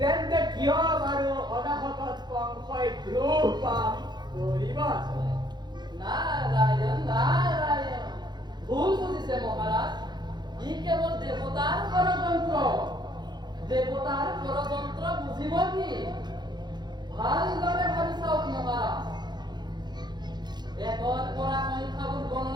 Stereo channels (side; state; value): left; late; 0.21 ms